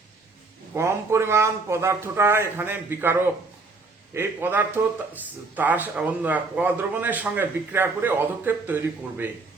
কম পরিমাণ পদার্থটা এখানে বিকারক। এই পদার্থ তার ক দ্রবণের সঙ্গে বিক্রিয়া করে অধক্ষেপ তৈরি করবে।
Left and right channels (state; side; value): quieter; left; 3.7 dB